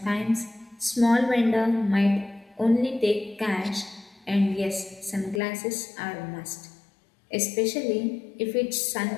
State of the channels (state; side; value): drops out; right; at 5.4 s